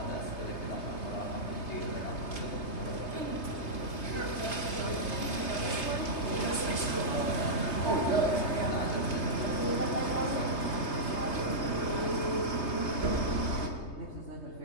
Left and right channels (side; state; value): right; late; 3.3 ms